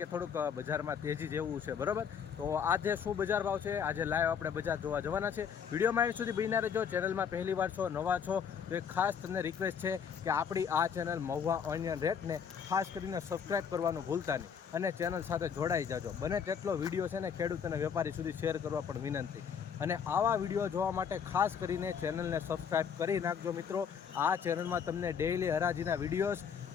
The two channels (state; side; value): quieter; right; 7.3 dB